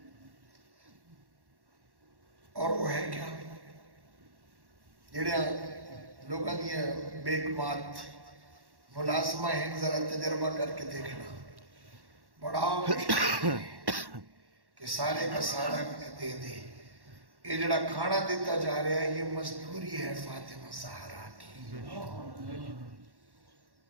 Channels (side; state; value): left; late; 1.1 ms